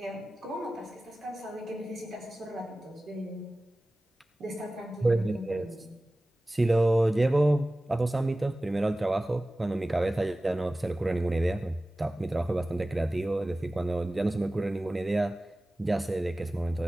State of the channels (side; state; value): both; normal; correlation 0.97